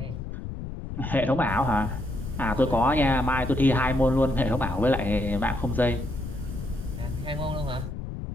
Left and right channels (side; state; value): left; noise; rumble, 7 dB below the sound